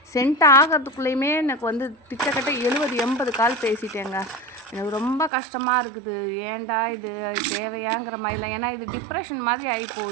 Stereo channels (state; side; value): drops out; left; at 5.3 s